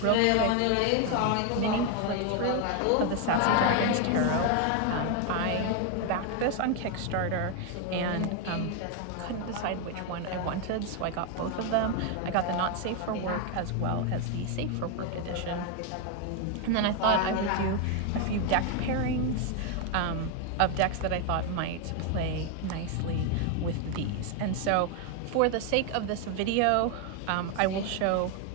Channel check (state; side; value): different; both; correlation 0.01